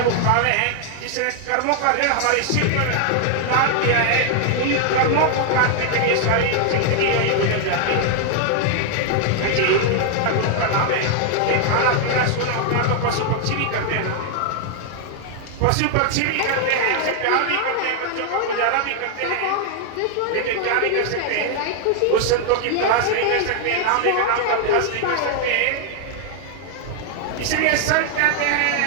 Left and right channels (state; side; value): different; both; correlation 0.00